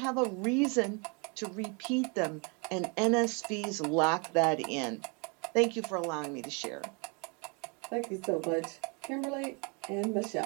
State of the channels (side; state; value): left; quieter; 33.1 dB